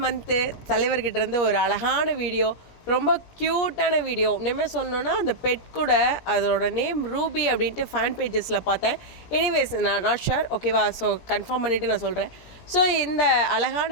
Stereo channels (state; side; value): late; right; 17 ms